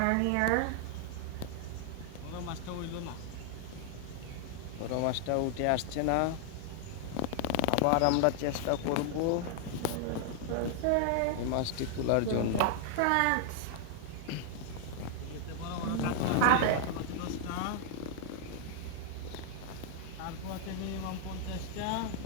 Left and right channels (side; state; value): both; different; correlation 0.00